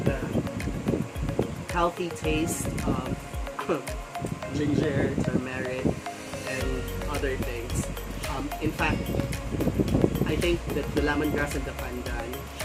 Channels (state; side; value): identical; both; correlation 1.00